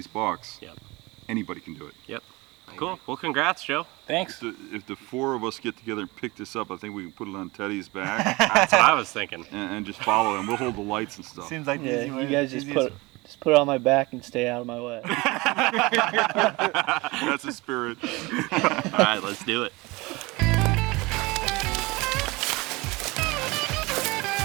bucks, Yep. anybody can do it. Yep. Cool. Well, congrats, Joe. Thanks. If the four of us get together and pick this up, I think we can put it on Teddy's back That's what I was thinking. and just follow him. We'll hold the lights and stuff. Seems like the Yeah, easy way. you guys just easiest- put it on my back and stay out of my way. That's the spirit. All right, let's do it.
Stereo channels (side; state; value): left; quieter; 23.4 dB